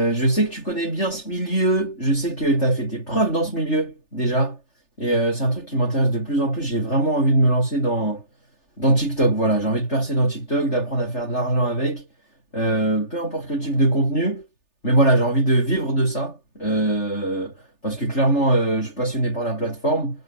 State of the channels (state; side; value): late; right; 3.4 ms